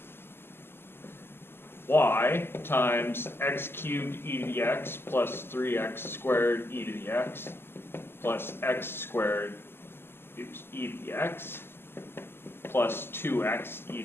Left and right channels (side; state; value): right; late; 0.11 ms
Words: y times x cubed e to the x plus 3x squared e to the x plus x squared e to the x plus 2x e